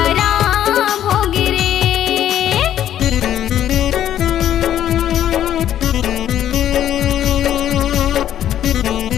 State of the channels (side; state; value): right; quieter; 11.1 dB